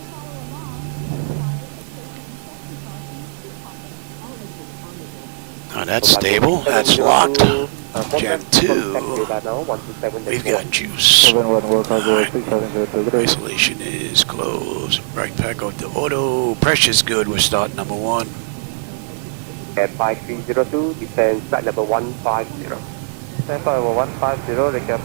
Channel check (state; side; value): silent; left; digital silence